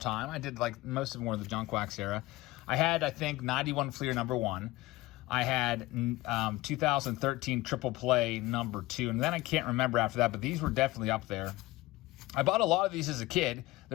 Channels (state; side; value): quieter; right; 19.2 dB